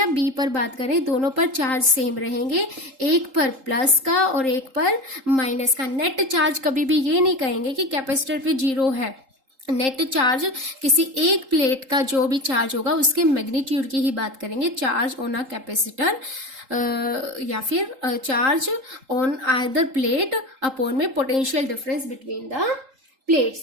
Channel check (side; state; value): left; late; 3.8 ms